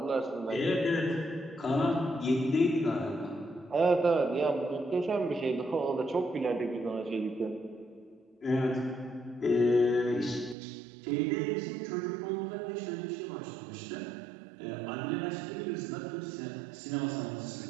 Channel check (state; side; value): drops out; left; at 10.6 s